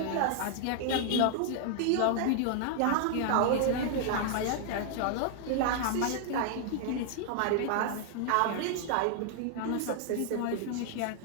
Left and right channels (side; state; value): both; different; correlation 0.00